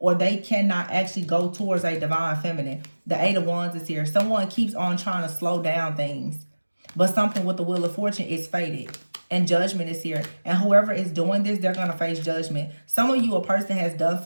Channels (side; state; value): both; inverted; correlation -1.00